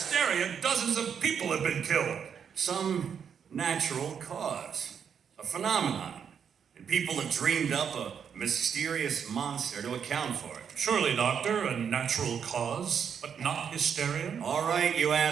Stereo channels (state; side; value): quieter; left; 7.4 dB